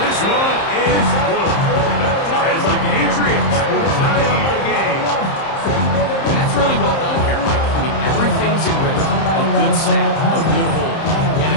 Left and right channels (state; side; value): late; right; 30 ms